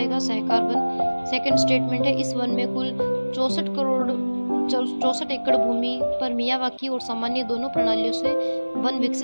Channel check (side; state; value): both; inverted; correlation -1.00